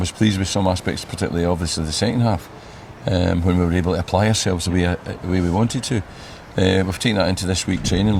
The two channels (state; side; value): identical; both; correlation 1.00